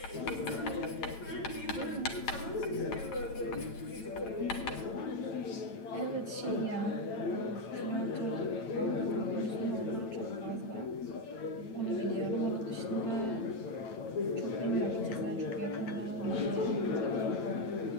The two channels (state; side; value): late; right; 9.0 ms